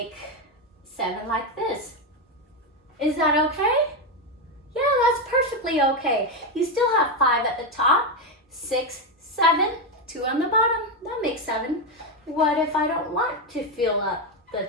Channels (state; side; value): normal; both; correlation 0.08